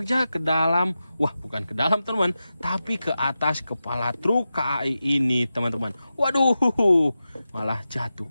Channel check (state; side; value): inverted; both; correlation -0.92